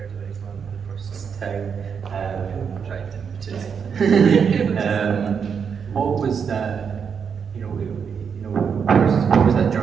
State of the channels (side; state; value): left; quieter; 6.7 dB